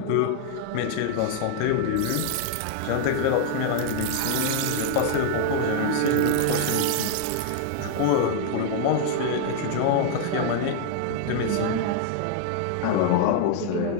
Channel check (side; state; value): both; different; correlation 0.00